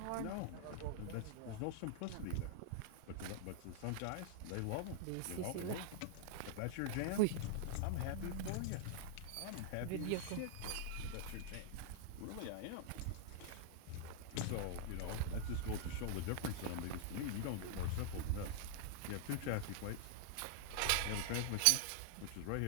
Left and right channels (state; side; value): different; both; correlation -0.01